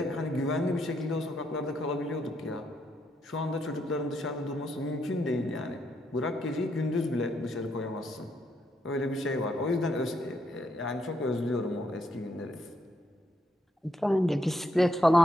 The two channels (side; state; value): both; normal; correlation 0.76